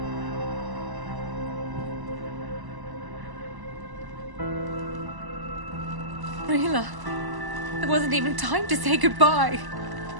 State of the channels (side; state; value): left; late; 1.0 ms